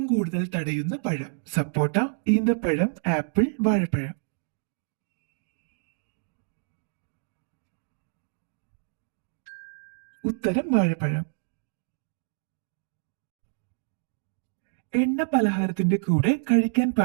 കൂടുതൽ തടയുന്ന പഴം സപ്പോട്ട, ഈന്തപ്പഴം, ആപ്പിൾ, വാഴപ്പഴം. ഉത്തരം വാഴപ്പഴം. എണ്ണ പലഹാരത്തിന്റെ കൂടെ കഴിക്കാൻ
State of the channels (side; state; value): left; silent; digital silence